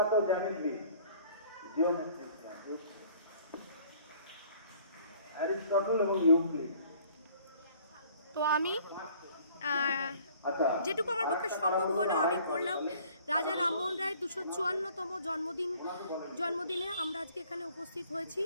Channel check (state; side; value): inverted; both; correlation -0.55